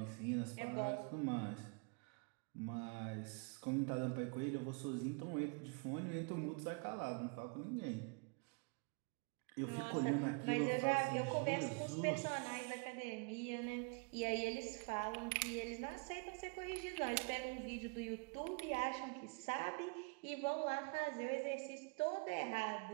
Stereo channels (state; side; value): quieter; left; 31.4 dB